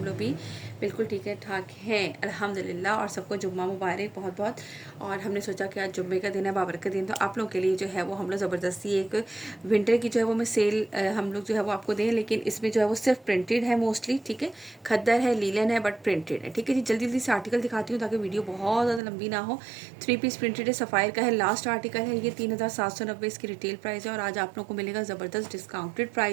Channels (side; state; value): left; drops out; at 19.0 s